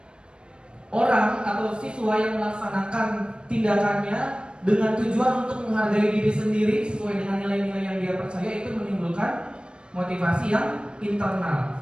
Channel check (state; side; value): late; left; 0.054 ms